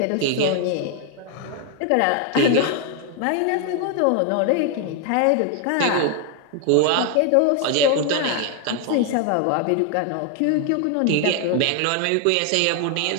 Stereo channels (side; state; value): both; different; correlation 0.00